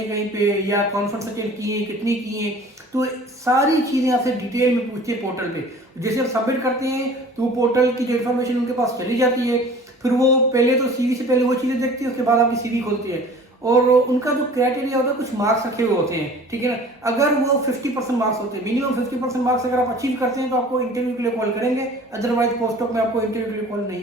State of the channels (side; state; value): both; normal; correlation 0.46